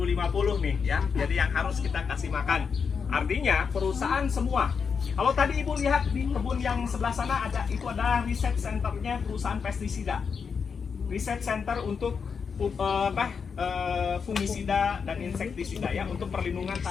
nih ya. Jadi yang harus kita kasih makan. Artinya perusahaan semua. Kalau tadi Ibu lihat di kebun yang sebelah sana itu adalah riset centernya perusahaan pestisida. Riset center untuk fungisida dan insektisida ya, untuk perlindungan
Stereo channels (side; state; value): right; quieter; 6.0 dB